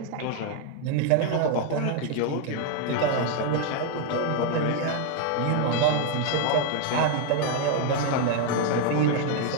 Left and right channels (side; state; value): both; different; correlation 0.00